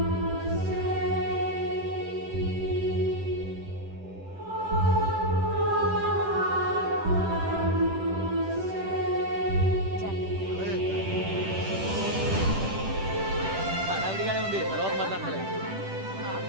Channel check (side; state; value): left; late; 10 ms